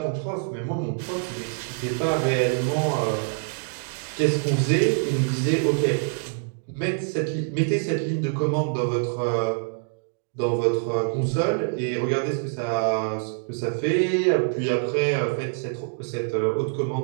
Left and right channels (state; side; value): silent; left; digital silence